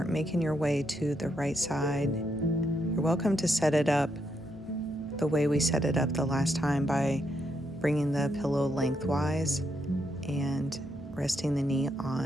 making your way to the right side. You're welcome to set it up the way we set it up the last time by bringing the pillow lengthwise and resting the knee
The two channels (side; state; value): both; normal; correlation 0.79